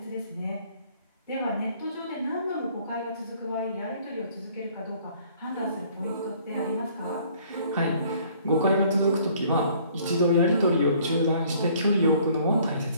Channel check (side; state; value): both; inverted; correlation -0.58